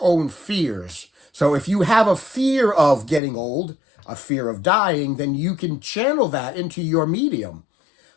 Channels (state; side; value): drops out; right; at 3.2 s